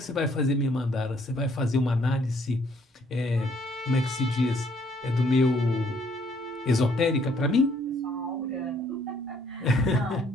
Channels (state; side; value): normal; both; correlation 0.65